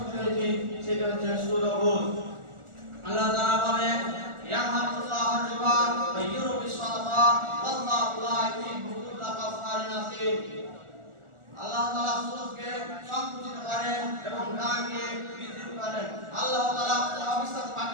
হয়েছি সেটা হচ্ছে সুদ ও ঘুষ। আল্লাহ তাআলা বলেন ইয়ামহাকুল্লাহু রিবা ওয়া ইউরবি সাদাকা ওয়াল্লাহু লা ইউহিব্বু কুল্লা কাফারিন আসীম। আল্লাহ তাআলা সুদকে সংকুচিত করেন এবং গানকে বৃদ্ধি করেন। আল্লাহ তাআলা অবিশ্বাস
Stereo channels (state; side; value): late; left; 1.4 ms